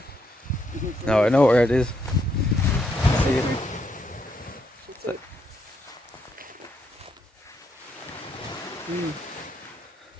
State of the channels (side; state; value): both; normal; correlation 0.76